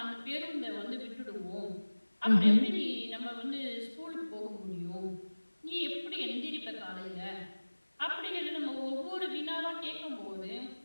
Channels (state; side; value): inverted; both; correlation -1.00